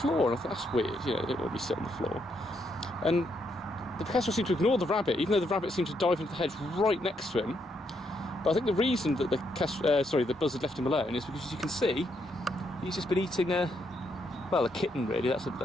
and I thought, that's weird, you know, they don't want to be sit on the floor. And the kestrel seemed to ignore the rabbit, even though the rabbit seemed to dive into the hedge right next to him. But I think the reason that the buzzard left him alone is because, as you can see, he's just been eating a kitten really. That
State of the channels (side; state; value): both; normal; correlation 0.76